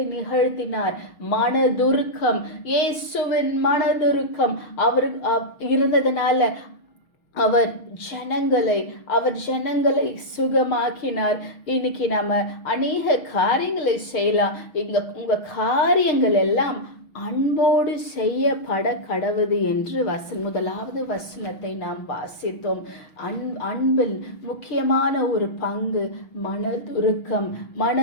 நிகழ்த்தினார்? மனதுருக்கம். இயேசுவின் மனதுருக்கம் அவர் இருந்ததனால அவர் ஜனங்களை சுகமாக்கினார். இன்னைக்கு நம்ம அநேக காரியங்களை செய்யலாம். உங்க காரியங்கள் எல்லாம் அன்போடு செய்யப்பட கடவுது என்று முதலாவது வசனத்தை நாம் வாசித்தோம். அன்பில் முக்கியமான ஒரு பங்கு மனதுருக்கம்.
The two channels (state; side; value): late; right; 6.3 ms